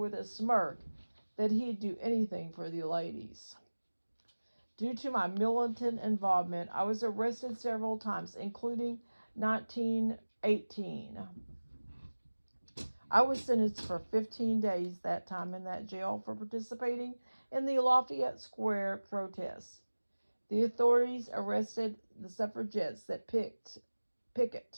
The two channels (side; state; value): both; inverted; correlation -1.00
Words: a smirk that he'd do anything for the ladies. Due to my militant involvement, I was arrested several times, including 1918. I was sentenced for 15 days that time in that jail for participating in the Lafayette Square protests. The authorities arrested the suffragettes that